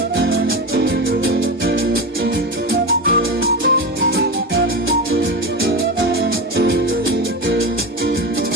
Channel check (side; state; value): both; normal; correlation 0.22